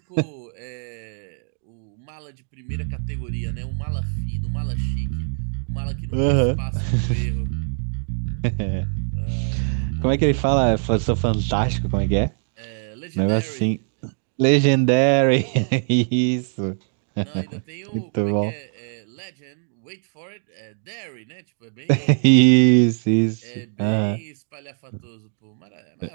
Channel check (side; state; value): left; silent; digital silence